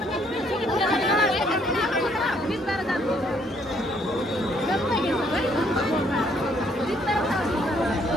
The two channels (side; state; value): both; normal; correlation 0.67